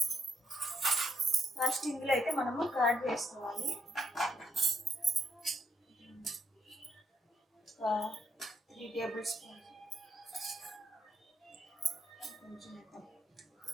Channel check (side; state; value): both; normal; correlation 0.75